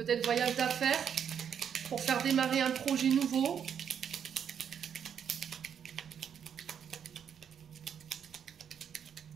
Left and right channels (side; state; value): left; quieter; 8.1 dB